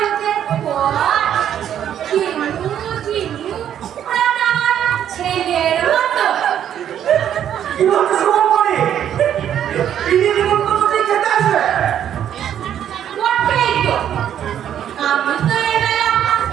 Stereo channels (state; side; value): quieter; left; 10.0 dB